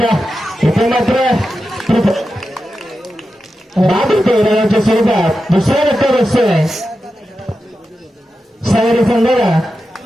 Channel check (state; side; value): normal; both; correlation 0.90